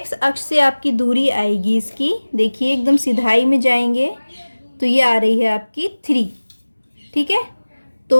अक्ष से आपकी दूरी आएगी इसकी, देखिए एकदम सीधाई में जाएंगे तो तो ये आ रही है आपकी 3। ठीक है,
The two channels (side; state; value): both; inverted; correlation -1.00